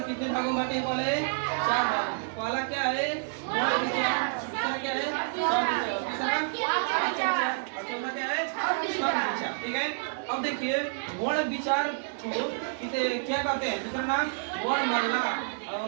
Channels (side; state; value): left; silent; digital silence